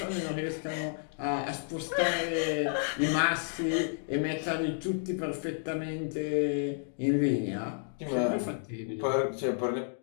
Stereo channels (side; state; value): right; silent; digital silence